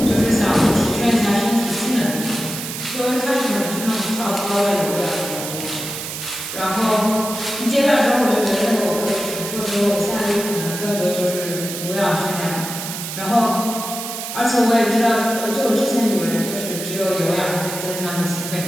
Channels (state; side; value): noise; right; hiss, 7 dB below the sound